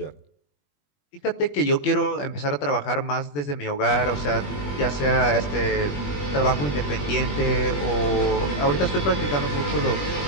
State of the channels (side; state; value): right; late; 21 ms